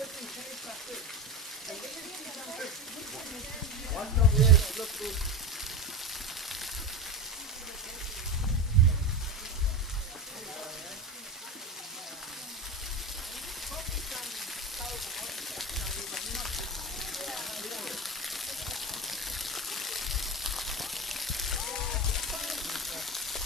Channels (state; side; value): normal; both; correlation 0.22